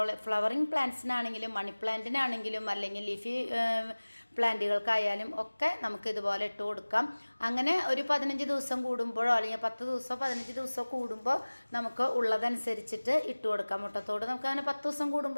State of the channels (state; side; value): inverted; both; correlation -1.00